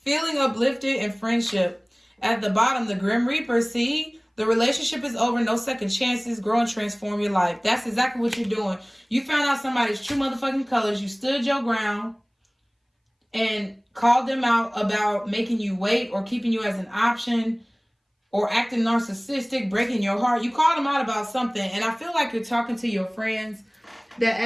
uplifted and friendship. At the bottom, the Grim Reaper, see? The relationship is over, no second chances, grow and transform your life. That's exactly what you're doing. You found out somebody's true motherfucking colors. You stood your ground and called them out about making you wait or keeping you as an option or acting narcissistic, breaking your heart. You called them out about something, and I feel like you're talking to your friends. That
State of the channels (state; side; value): identical; both; correlation 1.00